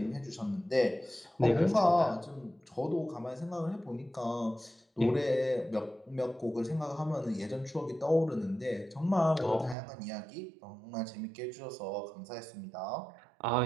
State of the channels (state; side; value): drops out; left; at 9.8 s